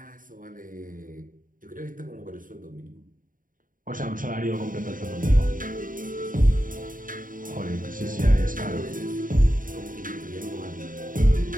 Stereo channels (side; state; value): left; late; 0.39 ms